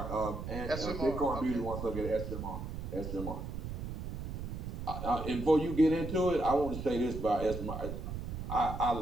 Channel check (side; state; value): right; noise; rumble, 6 dB below the sound